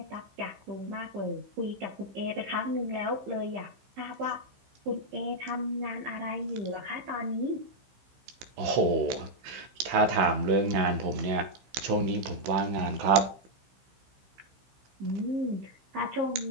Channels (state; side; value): late; left; 15 ms